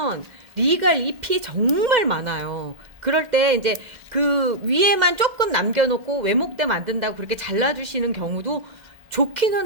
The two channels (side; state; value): left; late; 2.1 ms